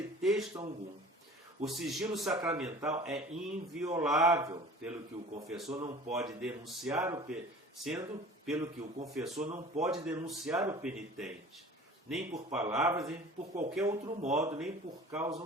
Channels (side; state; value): both; normal; correlation 0.43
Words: algum. O sigilo sacramental é inviolável, pelo que o confessor não pode denunciar o penitente, nem por palavras, nem por qualquer outro modo, nem por causa